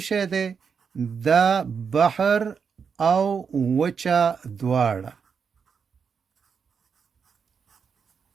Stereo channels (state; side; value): quieter; left; 6.2 dB